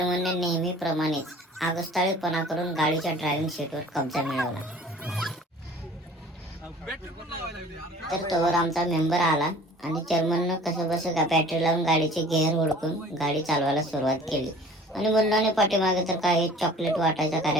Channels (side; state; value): both; normal; correlation 0.47